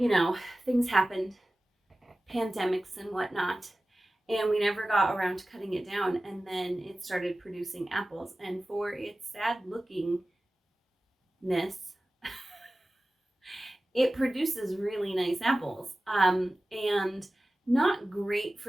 know, things happened, pandemics and whatnot, and we never got around to cutting it down. And then it started producing apples. And for its sad lookingness, it produces really nice apples. And not great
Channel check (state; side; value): normal; both; correlation 0.96